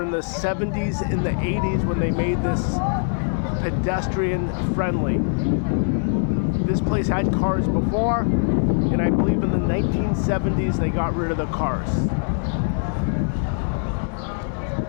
the 70s and the 80s when they made this pedestrian friendly. This place had cars before, and I believe in the 1970s they got rid of the cars.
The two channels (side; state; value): right; silent; digital silence